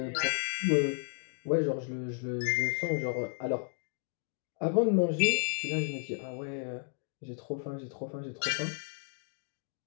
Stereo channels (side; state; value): right; silent; 56 dB below the other